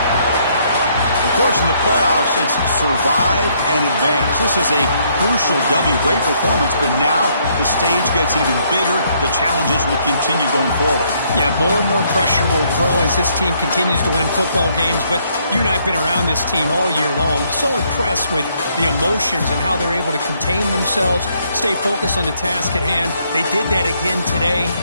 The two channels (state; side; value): inverted; both; correlation -0.69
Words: Of course, in the playoffs, it's survive and advance. This is a crucial W. Great performance, but now the stage gets even bigger. The challenges will continue going forward. Yeah, more and more pressure will grow as this team continues to win football games. But you and I have been around this team all year long. So impressed with the emotions and how they're able to contain themselves, stay focused on the task at hand. They did that again today.